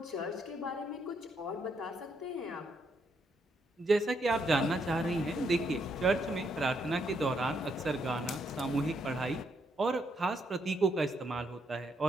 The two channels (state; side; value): normal; both; correlation 0.76